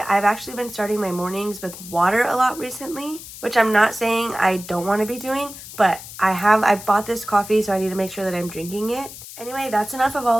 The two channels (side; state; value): left; noise; hiss, 14 dB below the sound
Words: actually been starting my mornings with water a lot recently, which I'm not saying I don't want to be doing, but I bought this coffee, so I need to make sure that I'm drinking it. Anyway, that's enough of